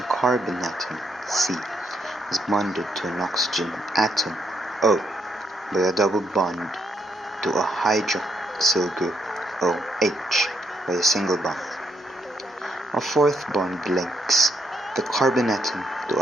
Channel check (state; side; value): normal; both; correlation 0.76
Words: carbon atom, C, is bonded to an oxygen atom, O, by a double bond to a hydroxyl group, OH, by a single bond. A fourth bond links the carbon atom to